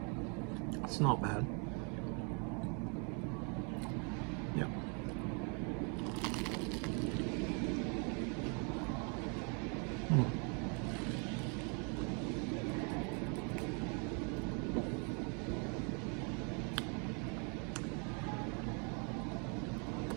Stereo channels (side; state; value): left; quieter; 36.5 dB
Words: It's not bad. Yeah.